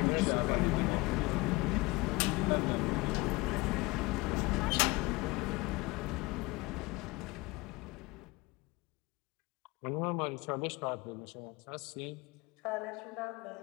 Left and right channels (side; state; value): right; quieter; 23.3 dB